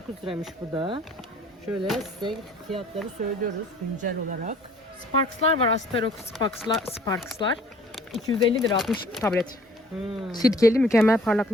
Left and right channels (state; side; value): normal; both; correlation 0.54